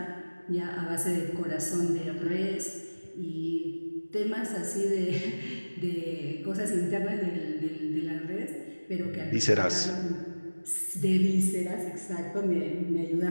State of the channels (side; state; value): both; inverted; correlation -1.00